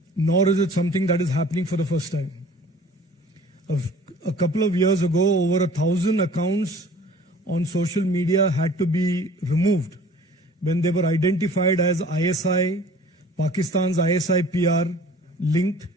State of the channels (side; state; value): both; normal; correlation 0.48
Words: nor is it something that is happening for the first time. A couple of years ago, over 1,000 accounts on social media had to be removed when they were identified as ISI, Pakistan's ISI PR linked,